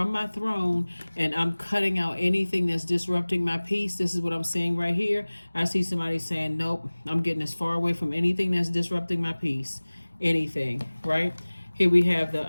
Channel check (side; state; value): both; inverted; correlation -1.00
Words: my throne and I'm cutting out anything that's disrupting my peace. This is what I'm seeing right here. I see somebody saying, nope, I'm getting as far away from anything that's disrupting my peace. Anything, right? Here we have